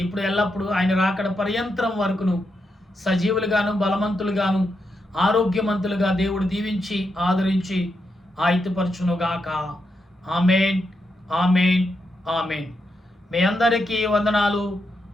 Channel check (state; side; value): normal; both; correlation 0.84